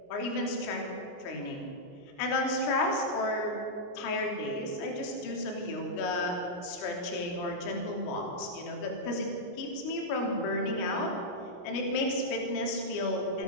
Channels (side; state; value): right; late; 29 ms